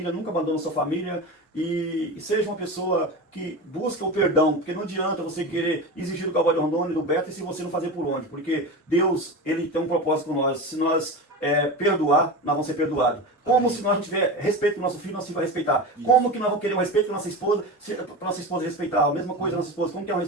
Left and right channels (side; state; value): both; normal; correlation 0.26